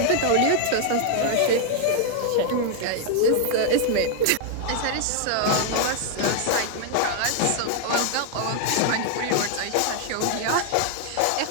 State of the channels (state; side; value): different; both; correlation 0.00